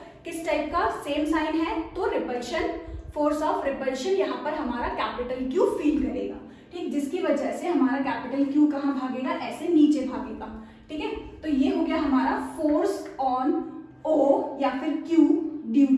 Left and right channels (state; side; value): identical; both; correlation 1.00